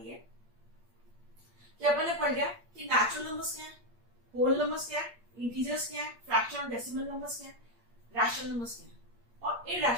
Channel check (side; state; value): left; late; 8.5 ms